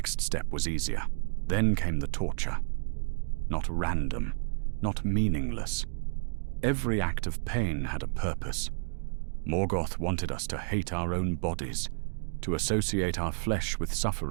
step was easier. Then came the torture. Not random, not meaningless. Every act of pain had a purpose. Morgoth wanted us to hate our own bodies, to associate our flesh with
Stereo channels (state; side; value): silent; left; digital silence